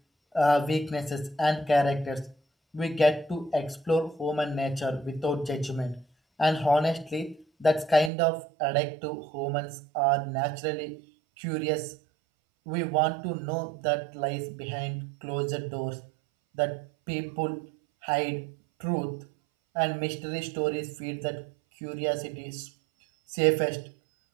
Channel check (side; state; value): left; drops out; at 8.1 s